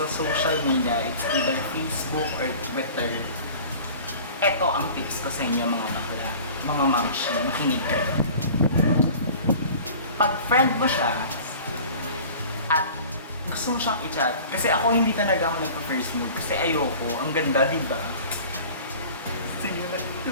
social media, it's either Facebook or Twitter. Ito ang tips ko sa inyo mga bakla, mga mamshi, makinig kayo. Pag friend mo siya at gusto mo siyang i-chat, kasi ako hindi talaga ako nagpa-first move kasi ayoko, ang ganda, diba? Sige na,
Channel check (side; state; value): both; inverted; correlation -0.43